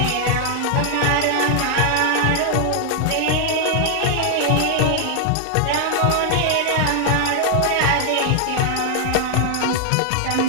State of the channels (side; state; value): both; different; correlation 0.00